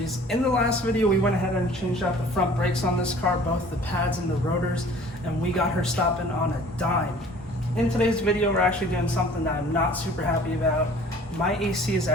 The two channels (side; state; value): both; normal; correlation 0.50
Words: In the last video, we went ahead and changed out the front brakes on this car, both the pads and the rotors, and we got her stopping on a dime. In today's video, we're actually doing something that I'm not super happy about. My AC is